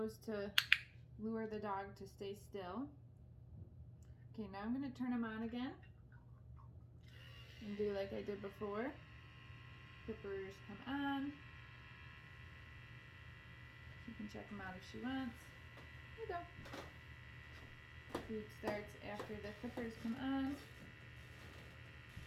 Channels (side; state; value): both; identical; correlation 1.00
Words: to lure the dog to stay still. Okay, now I'm going to turn them on again and do like I did before. Clippers come on. She can check them out if she wants. Here you go. Food starts after the clippers come on.